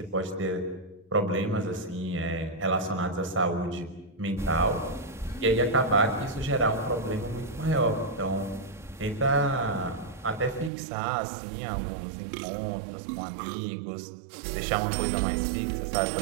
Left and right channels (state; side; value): drops out; left; at 10.7 s